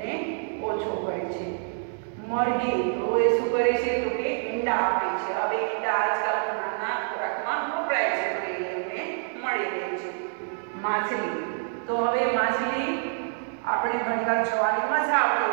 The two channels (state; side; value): silent; left; digital silence